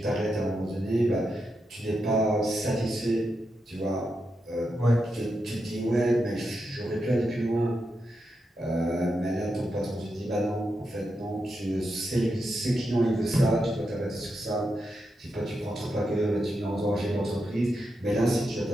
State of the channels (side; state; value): both; normal; correlation 0.86